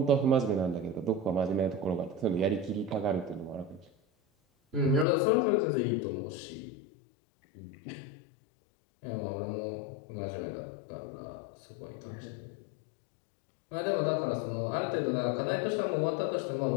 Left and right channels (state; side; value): drops out; right; at 5.1 s